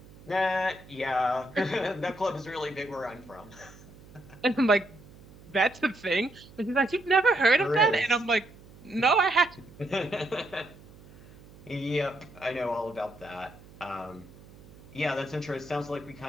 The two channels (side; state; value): right; noise; hum, 22 dB below the sound